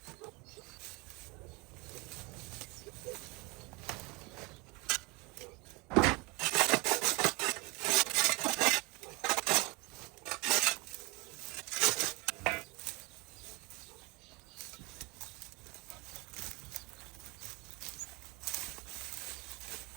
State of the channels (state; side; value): quieter; left; 27.1 dB